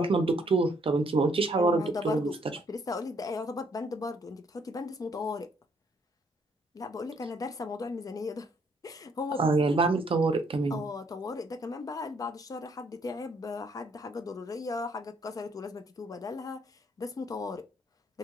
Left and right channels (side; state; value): both; normal; correlation 0.68